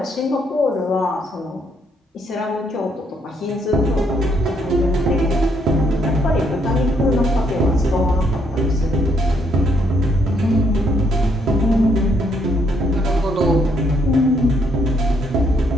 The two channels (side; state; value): both; normal; correlation 0.71